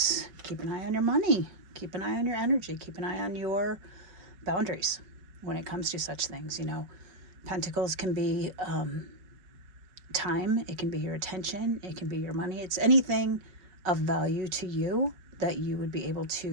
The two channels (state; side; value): late; left; 5.5 ms